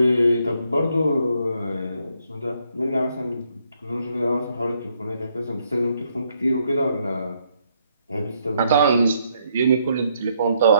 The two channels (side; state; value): both; inverted; correlation -0.74